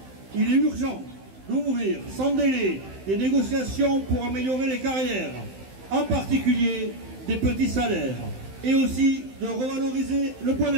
Il est urgent d'ouvrir sans délai des négociations pour améliorer les carrières, en particulier des petits salaires, et aussi de revaloriser le point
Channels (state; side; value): late; left; 15 ms